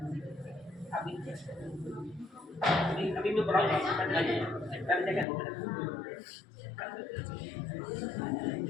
अभी मैं बुलाऊंगा जगह हो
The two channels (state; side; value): drops out; right; at 5.2 s